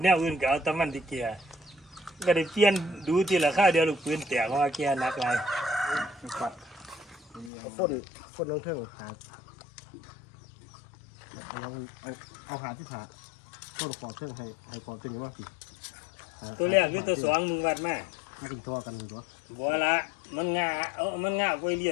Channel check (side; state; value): right; drops out; at 7.5 s